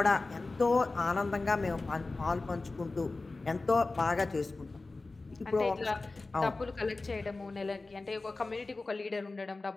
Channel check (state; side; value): quieter; right; 3.4 dB